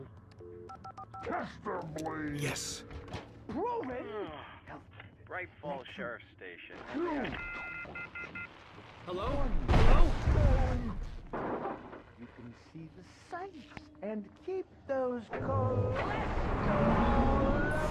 Testably. Yes. proven. Great Falls Sheriff Station. Hello? Hello? You can see the sights and keep those cholesterol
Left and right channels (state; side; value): identical; both; correlation 1.00